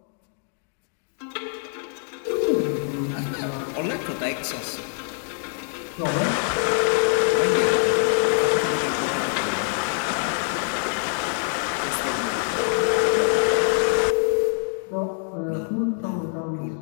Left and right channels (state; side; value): silent; right; 59 dB below the other